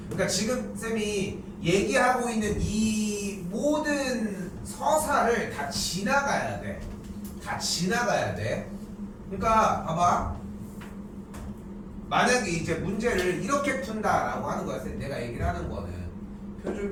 그러니까 지금 쌤이 얘기하고 있는 이 모든 서사를 다 지나가야 돼. 다 지나가야 돼. 그러니까 봐봐. 만약에 이제 문제를 이렇게 푼다라고 하는 거야. 내가 얘기를 하는 거는 표준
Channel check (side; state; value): both; identical; correlation 1.00